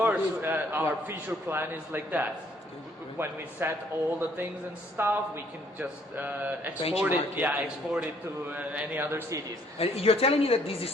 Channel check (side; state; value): both; normal; correlation 0.63